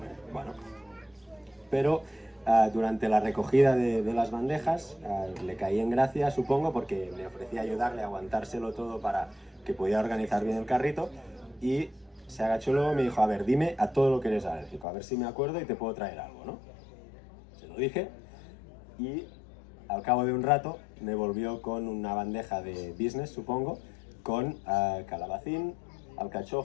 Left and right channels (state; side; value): drops out; right; at 14.9 s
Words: Bueno, pero durante la recogida de las bandejas le caí en gracia, supongo, porque le ofrecí ayudarle a aguantárselo todo para que pudiera organizar bien el carrito y se agachó luego y me dijo, a ver, dime a todo lo que eres alérgico, a ver si me acuerdo y te puedo traer algo, ¿no? Se lo dije y al cabo de un rato me volvió con una bandeja de business, supongo, con calabacín,